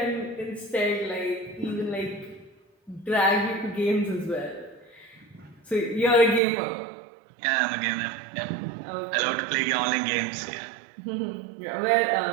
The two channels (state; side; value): drops out; left; at 6.4 s